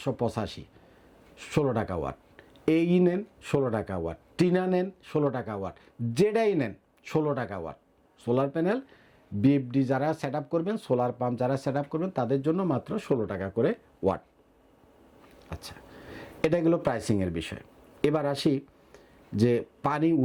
16 টাকা ওয়াট। এই নেন 16 টাকা ওয়াট, টিনা নেন 16 টাকা ওয়াট, যেটাই নেন 16 টাকা ওয়াট। সোলার প্যানেল বিএফডি যারা সেট আপ করবেন, সোলার পাম্প যারা সেট আপ করবেন তাদের জন্য মাত্র 16 টাকা করে ওয়াট। আচ্ছা, এটা গেলো প্রাইসিংয়ের বিষয়। এবার আসি যে পানি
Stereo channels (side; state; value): both; identical; correlation 1.00